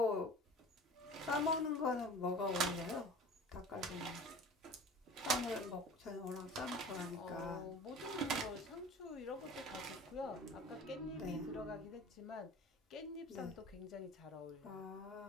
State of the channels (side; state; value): both; normal; correlation 0.41